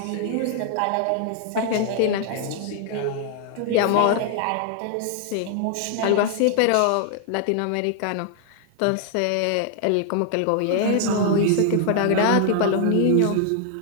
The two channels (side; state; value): both; different; correlation 0.00